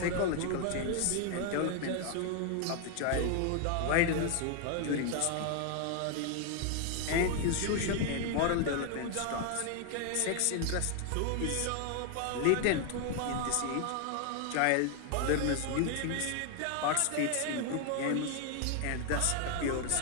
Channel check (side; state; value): both; different; correlation 0.00